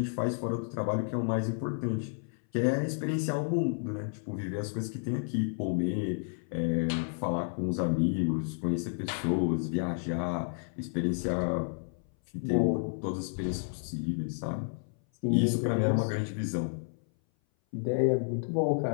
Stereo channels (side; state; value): right; silent; 57 dB below the other